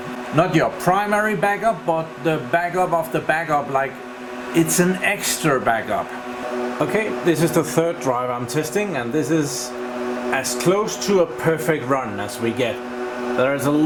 not your primary backup, but the backup of the backup, like it's an extra backup. Okay, this is the third drive I'm testing, and this is as close to a perfect run as we get. There is a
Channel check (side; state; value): both; identical; correlation 1.00